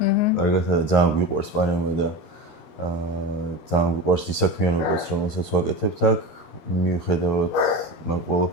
კარგად და ძალიან გვიყვარს პანამა და ძალიან გვიყვარს ის საქმიანობაც რომელსაც ვაკეთებთ აქ მიუხედავად მაგ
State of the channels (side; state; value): right; late; 13 ms